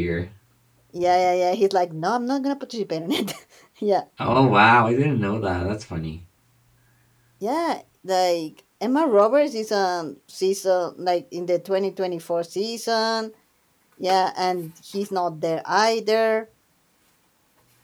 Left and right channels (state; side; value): identical; both; correlation 1.00